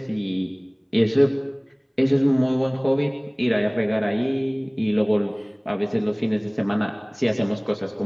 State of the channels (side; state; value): both; identical; correlation 1.00